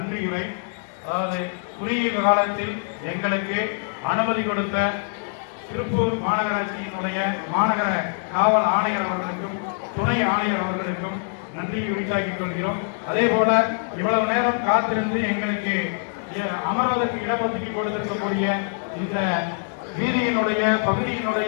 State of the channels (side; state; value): right; silent; digital silence